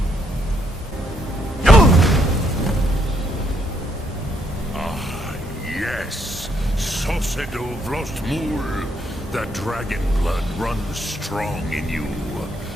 Ah, yes. Sosedo Vrostmul. The dragon blood runs strong in you.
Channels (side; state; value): both; normal; correlation 0.73